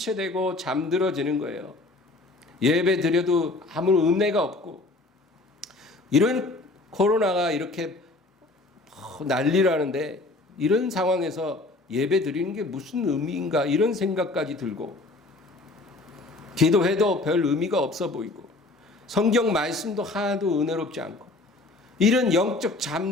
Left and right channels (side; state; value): right; quieter; 3.1 dB